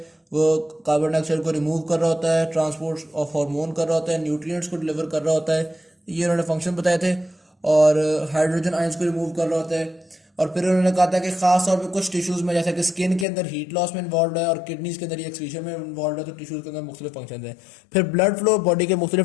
वो कार्बन डाइऑक्साइड को रिमूव कर रहा होता है, ट्रांसपोर्ट ऑफ हार्मोन कर रहा होता है, न्यूट्रिएंट्स को डिलीवर कर रहा होता है। ये उन्होंने फंक्शन बताए थे। और हाइड्रोजन आयंस को रिमूव कर रहा होता है। और फिर उन्होंने कहा था कि खास तौर पे कुछ टिश्यूज में, जैसे कि स्किन के अंदर हीट लॉस में इन्वॉल्व है और किडनीज के अंदर एक्सक्रीशन में इन्वॉल्व है, तो टिश्यूज के अंदर मुख्तलिफ फंक्शन हैं। फिर ब्लड फ्लो बॉडी के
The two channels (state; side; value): drops out; right; at 13.2 s